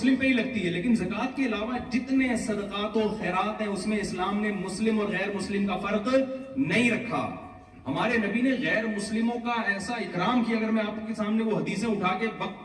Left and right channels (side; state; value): both; identical; correlation 1.00